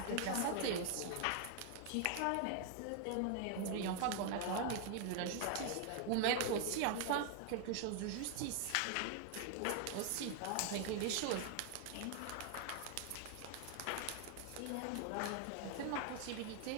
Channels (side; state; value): both; different; correlation 0.00